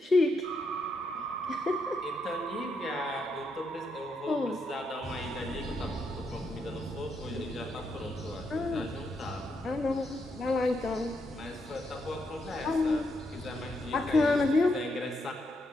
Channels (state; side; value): normal; both; correlation 0.79